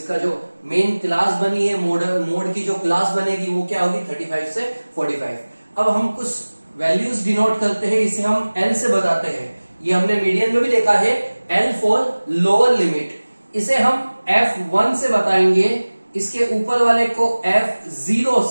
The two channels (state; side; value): inverted; both; correlation -1.00